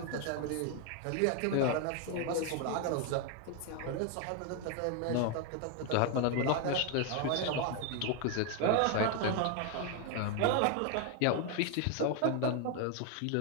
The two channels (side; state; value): both; different; correlation 0.01